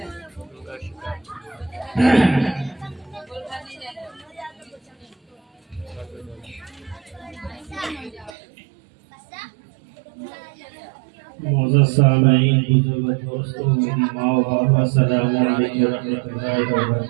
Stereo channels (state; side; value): drops out; left; at 8.3 s